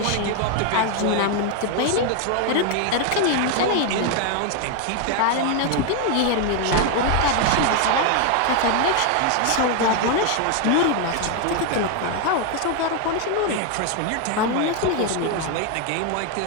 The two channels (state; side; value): different; both; correlation 0.01